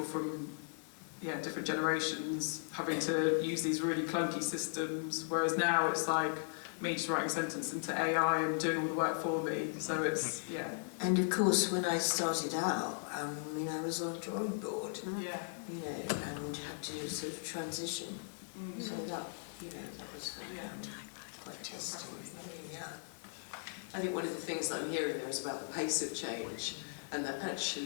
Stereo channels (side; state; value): right; silent; digital silence